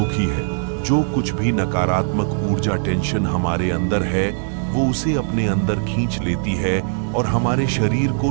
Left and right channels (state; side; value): silent; left; digital silence